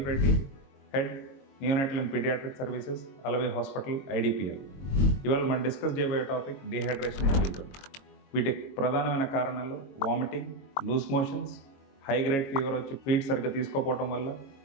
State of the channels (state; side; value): late; right; 22 ms